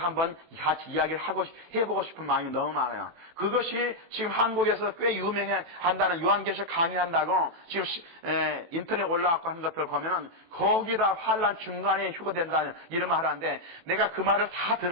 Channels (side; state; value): left; late; 18 ms